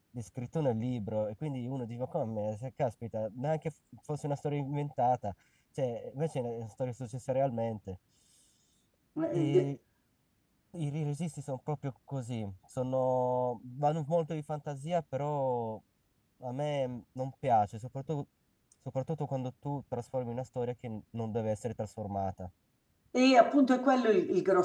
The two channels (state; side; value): identical; both; correlation 1.00